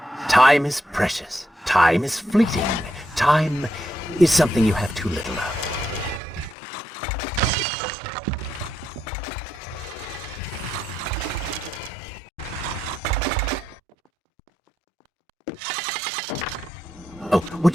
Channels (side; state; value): both; normal; correlation 0.81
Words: Time is precious. Time is fleeting. Time is something you have too little of. Oh,